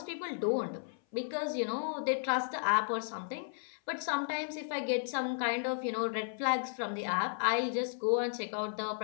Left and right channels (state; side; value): silent; right; 55 dB below the other